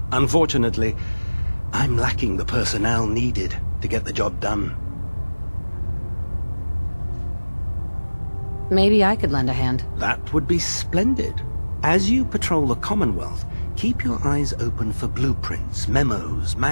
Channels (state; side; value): inverted; both; correlation -1.00